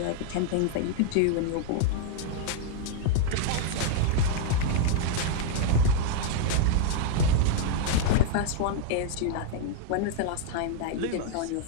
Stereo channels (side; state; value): both; different; correlation 0.00